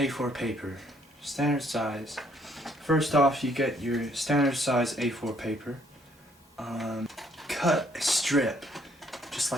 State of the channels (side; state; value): both; normal; correlation 0.66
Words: paper. Standard size. First off, you get your standard size A4 paper. Cut a strip, just